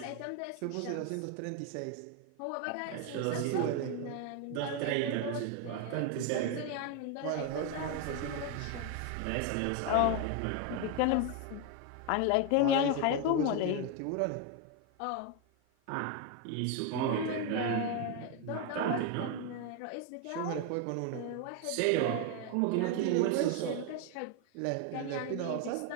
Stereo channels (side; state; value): both; different; correlation 0.01